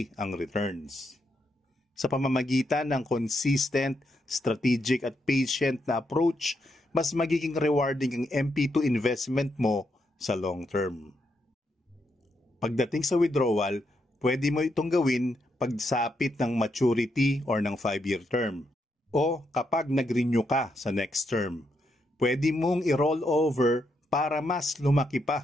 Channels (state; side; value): normal; both; correlation 0.80